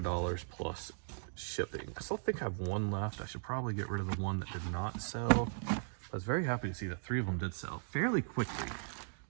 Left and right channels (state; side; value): silent; left; digital silence